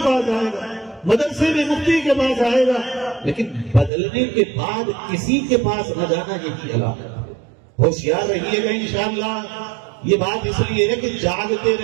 پاس آئے گا، مدرسے میں مفتی کے پاس آئے گا، لیکن بدلنے کے بعد کسی کے پاس نہ جانا یہی علامت ہے۔ ہوشیار رہیے گا انشاءاللہ۔ یہ بات اس لیے ہے کہ جاگتے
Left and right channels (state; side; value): drops out; left; at 3.9 s